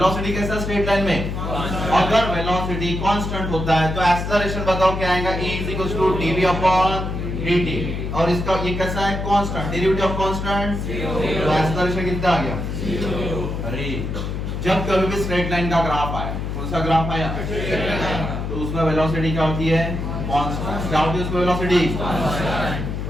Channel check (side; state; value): left; noise; hum, 4 dB below the sound